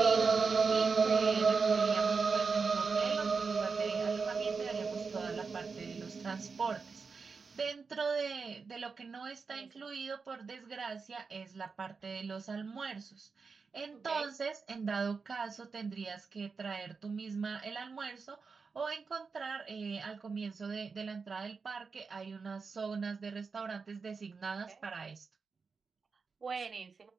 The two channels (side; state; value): left; quieter; 4.9 dB